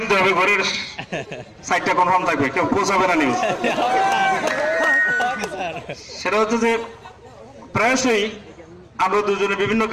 দিতে হবে, ঘরের সাইডটা কনফার্ম থাকবে, কেউ পৌঁছাবে না নিউজ। সেটা হচ্ছে যে প্রায়শই আমরা দুজনে বিভিন্ন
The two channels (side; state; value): both; identical; correlation 1.00